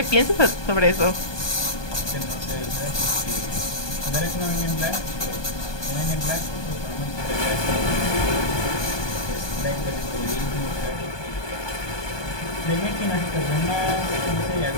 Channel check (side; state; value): right; late; 1.2 ms